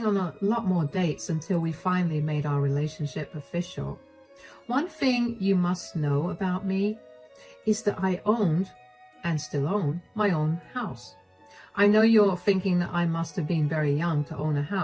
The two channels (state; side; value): identical; both; correlation 1.00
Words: on a lot more dates until we finally made our relationship official. One thing you must know about me is that I owned, and still own, my own house. I know you're thinking that I must have been very young to own a